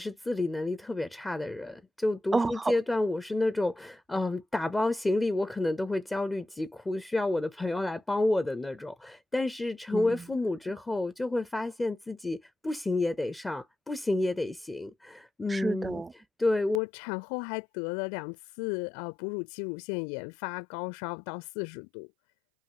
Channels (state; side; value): drops out; right; at 16.8 s